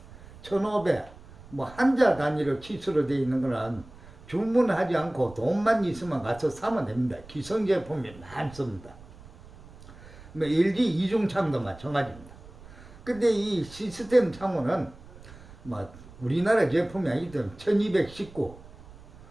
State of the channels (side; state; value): right; noise; rumble, 20 dB below the sound